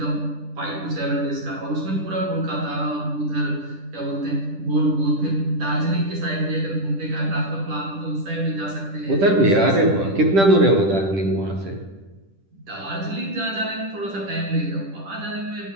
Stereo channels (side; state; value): left; late; 10 ms